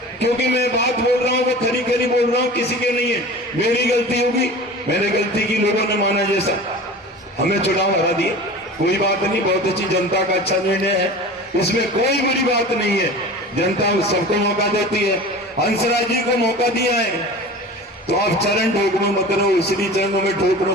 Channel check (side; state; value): both; normal; correlation 0.37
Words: क्योंकि मैं बात बोल रहा हूं वो खरी खरी बोल रहा हूं, किसी के नहीं है। मेरी गलती होगी, मैंने गलती की, लोगों ने माना जैसा, हमें चुनाव हरा दिए, कोई बात नहीं। बहुत अच्छी, जनता का अच्छा निर्णय है, इसमें कोई बुरी बात नहीं है। जनता सबको मौका देती है, हंसराज जी को मौका दिया है। तो आप चरण ठोकरो मत रहो, इसलिए चरणों में ठोक